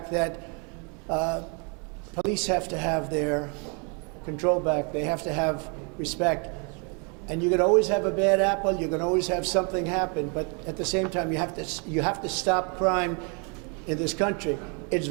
that police have to have their control back. They have to have respect. And you can always have a bad apple. You can always have something happen. But at the same time, you have to stop crime in this country. It's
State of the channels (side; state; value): left; quieter; 35.3 dB